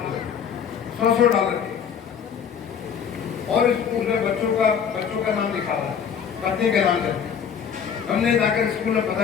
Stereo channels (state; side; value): quieter; right; 7.5 dB